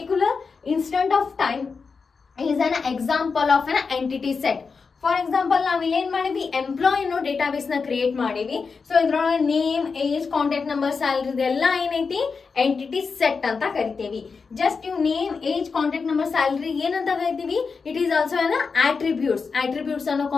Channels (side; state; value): right; quieter; 5.0 dB